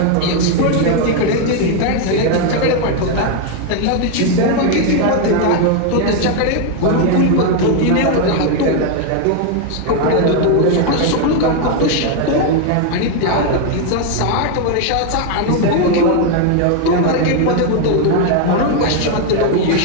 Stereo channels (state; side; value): different; both; correlation 0.01